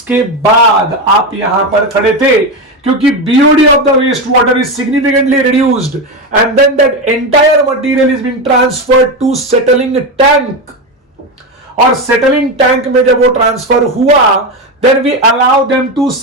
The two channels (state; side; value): normal; both; correlation 0.15